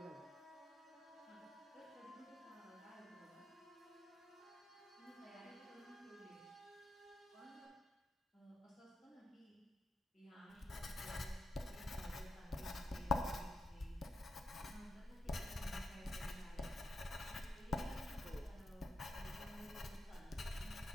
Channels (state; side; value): normal; both; correlation 0.85